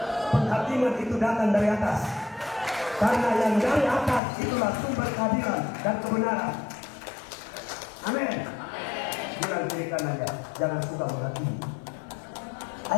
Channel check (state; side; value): drops out; right; at 4.2 s